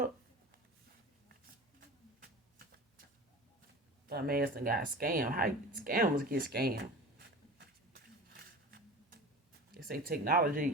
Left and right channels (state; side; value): normal; both; correlation 0.35